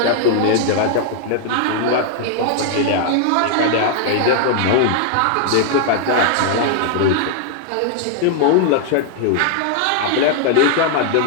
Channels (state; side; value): different; both; correlation 0.00